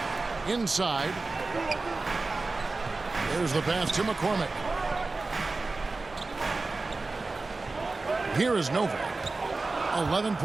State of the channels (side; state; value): left; quieter; 3.6 dB